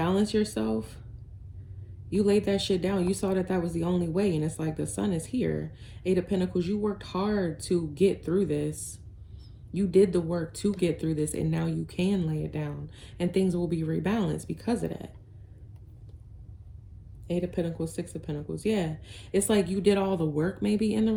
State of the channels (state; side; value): identical; both; correlation 1.00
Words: yourself. You laid that shit down. You saw that that was the only way. And it's like the sun is here. Eight of Pentacles. You worked hard to get through this. You did the work to get through this. And now you can lay it down. And things will be rebalanced because of that. Eight of Pentacles, Six of Pentacles. Yeah. It's like you did all the work maybe in the